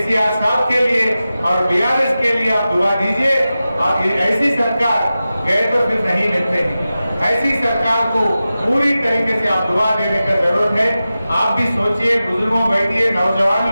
साहब के लिए और बीआरएस के लिए आप दुआ दीजिए। और ऐसी सरकार गए तो फिर नहीं मिलते हैं, ऐसी सरकार को पूरी तरीके से आप दुआ देने का जरूरत है। आप भी सोचिए, बुजुर्गों बैठिए, नौजवान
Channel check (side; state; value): both; inverted; correlation -0.94